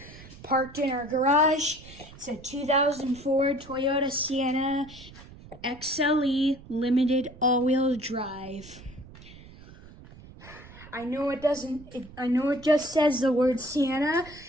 parked in our garage. It's a 2004 Toyota Sienna XLE limited all-wheel drive. I know it just says the word Sienna.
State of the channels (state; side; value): noise; right; rumble, 19 dB below the sound